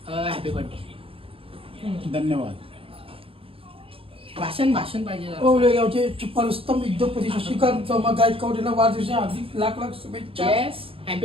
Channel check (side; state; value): left; late; 0.27 ms